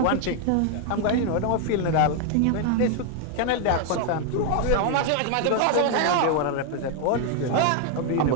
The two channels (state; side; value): different; both; correlation 0.00